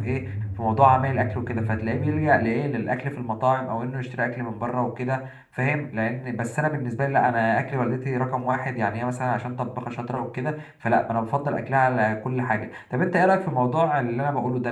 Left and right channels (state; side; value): identical; both; correlation 1.00